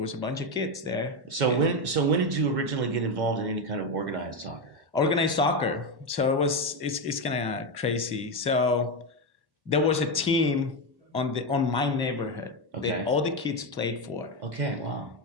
a bunch of kids there. So when did you originally get involved in any kind of organized soccer? Organized soccer. So it's kind of crazy. So there was a team on my neighborhood Okay. that all the kids played for, Okay. Wow.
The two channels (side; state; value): left; late; 1.1 ms